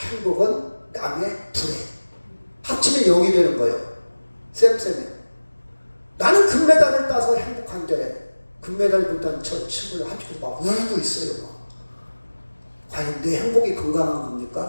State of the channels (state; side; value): inverted; both; correlation -1.00